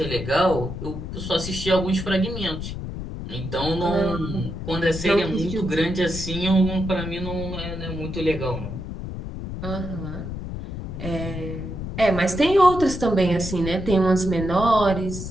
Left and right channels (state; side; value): noise; left; rumble, 7 dB below the sound